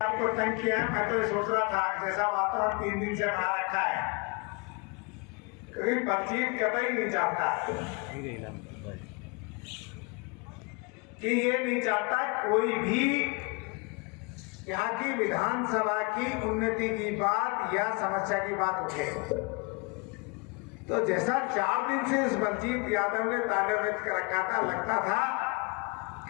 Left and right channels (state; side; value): quieter; right; 29.9 dB